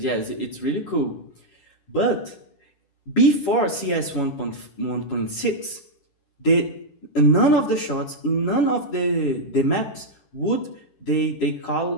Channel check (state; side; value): late; right; 10 ms